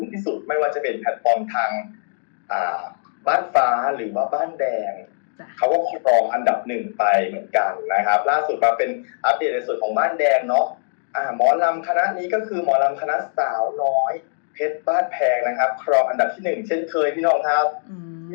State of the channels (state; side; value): silent; right; digital silence